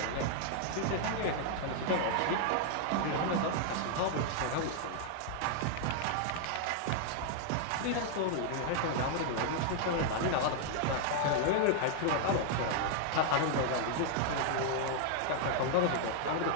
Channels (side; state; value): both; different; correlation 0.00